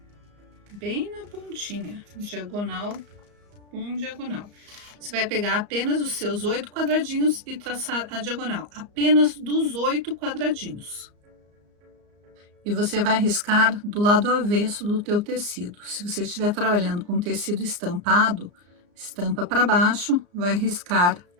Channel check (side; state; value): left; late; 34 ms